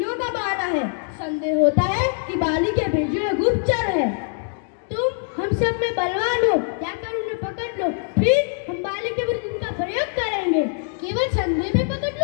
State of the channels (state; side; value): silent; right; digital silence